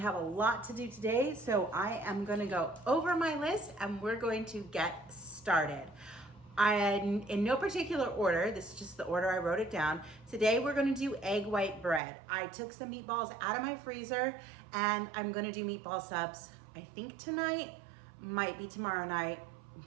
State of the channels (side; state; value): left; drops out; at 12.0 s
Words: a lot to do today, so I am gonna go over my list and we're going to get started. In no particular order, this is just the order I wrote it down. Today we're gonna do egg white bread. I took some meatballs out of my freezer and I'm gonna do meatball subs, I think tonight, might be tomorrow night. I'm